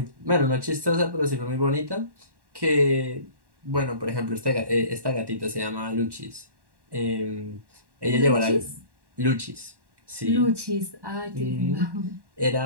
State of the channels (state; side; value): late; left; 1.1 ms